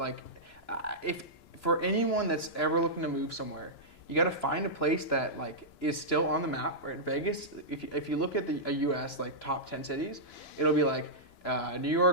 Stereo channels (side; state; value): right; late; 2.9 ms